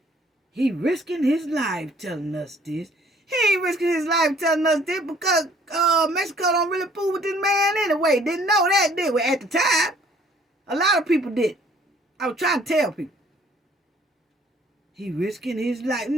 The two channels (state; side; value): normal; both; correlation 0.59